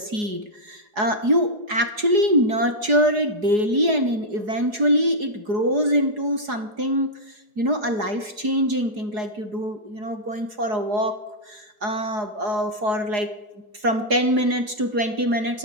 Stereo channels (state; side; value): late; left; 4.8 ms